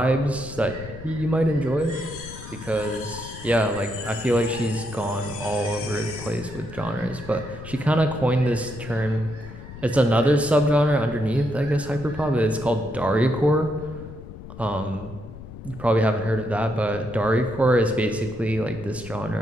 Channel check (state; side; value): noise; left; rumble, 14 dB below the sound